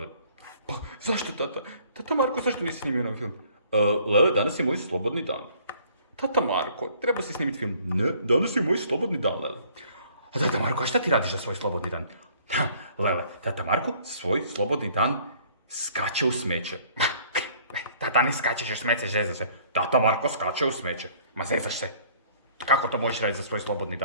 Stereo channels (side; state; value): both; inverted; correlation -0.57